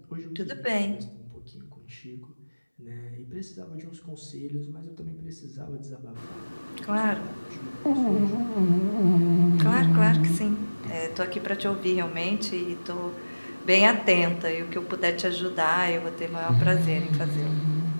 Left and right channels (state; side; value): inverted; both; correlation -1.00